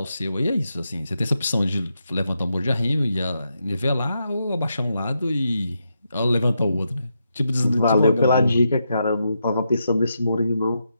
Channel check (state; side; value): inverted; both; correlation -0.84